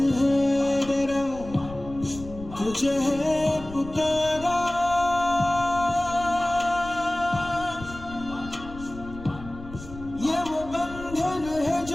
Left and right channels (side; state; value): left; noise; rumble, 15 dB below the sound